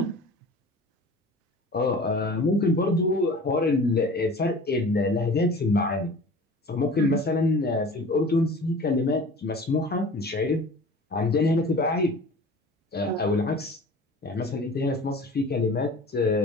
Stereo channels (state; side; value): normal; both; correlation 0.42